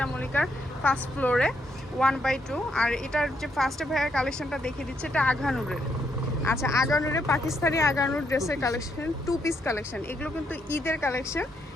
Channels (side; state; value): both; normal; correlation 0.76